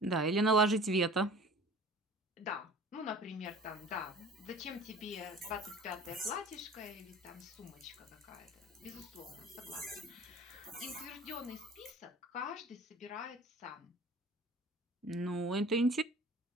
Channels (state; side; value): normal; both; correlation 0.44